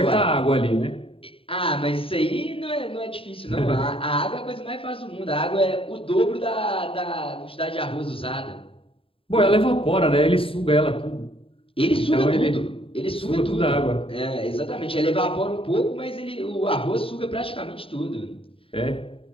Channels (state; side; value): late; right; 0.27 ms